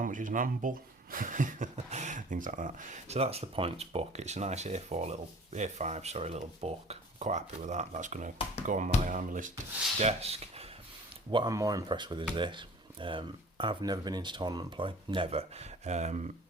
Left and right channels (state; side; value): normal; both; correlation 0.47